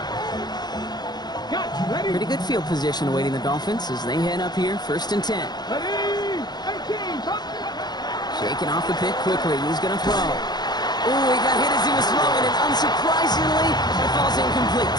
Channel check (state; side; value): late; right; 0.20 ms